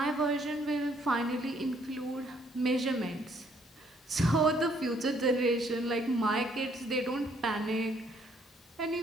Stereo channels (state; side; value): normal; both; correlation 0.66